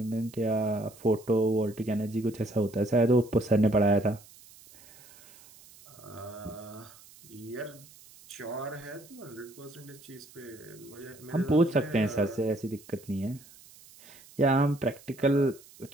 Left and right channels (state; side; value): noise; right; hiss, 23 dB below the sound